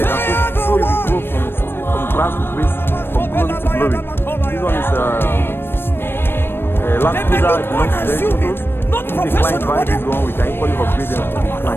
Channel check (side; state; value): right; late; 0.10 ms